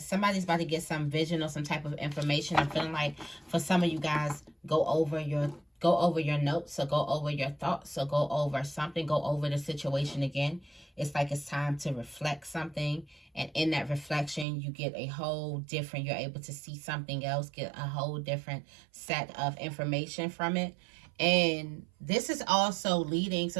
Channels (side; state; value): left; drops out; at 14.5 s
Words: about to get some vision or some type of information. I'm feeling like for some of you guys, go over your go over your notes, or go over your thoughts, or go over something, go over the situation again. It's like it's time to reflect something. And in that reflection, you get a whole different, you're able to see something else, get a whole different set of information from it. And this is also leading, so